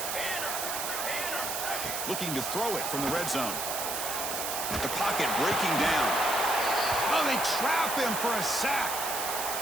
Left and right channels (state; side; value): noise; right; hiss, 3 dB below the sound